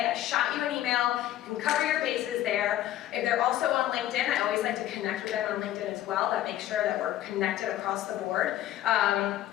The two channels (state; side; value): quieter; right; 13.2 dB